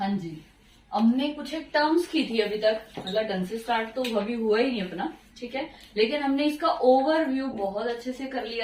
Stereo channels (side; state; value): both; identical; correlation 1.00